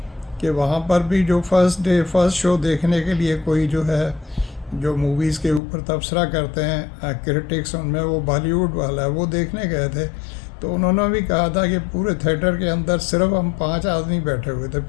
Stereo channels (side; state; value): right; drops out; at 5.6 s